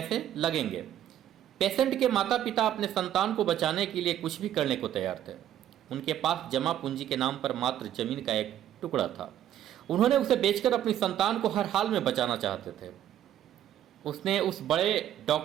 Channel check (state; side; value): quieter; left; 11.3 dB